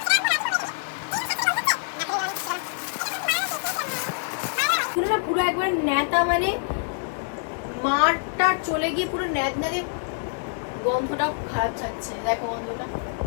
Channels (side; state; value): right; silent; digital silence